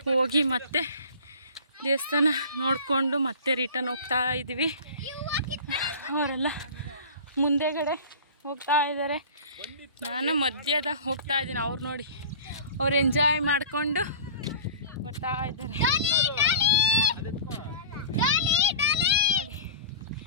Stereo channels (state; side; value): inverted; both; correlation -0.38